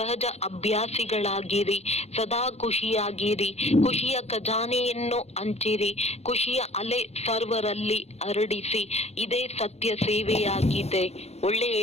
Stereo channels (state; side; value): late; right; 0.31 ms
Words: ಅಭ್ಯಾಸಿಗಳಾಗಿರಿ. ಸದಾ ಖುಷಿಯಾಗಿರಿ. ಖುಷಿಯ ಖಜಾನೆಯನ್ನು ಹಂಚಿರಿ. ಖುಷಿಯ ಅಲೆ ಸರ್ವರಲ್ಲಿ ಹರಡಿಸಿ. ಇದೇ ಸತ್ಯ ಸೇವೆಯಾಗಿದೆ.